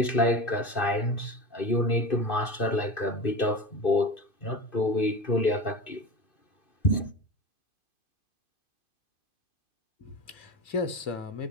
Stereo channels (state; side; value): late; right; 2.5 ms